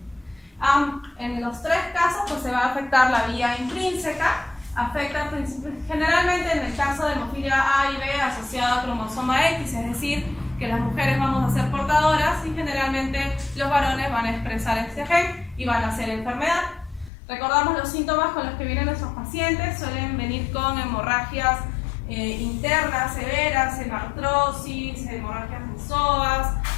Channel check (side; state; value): right; drops out; at 17.1 s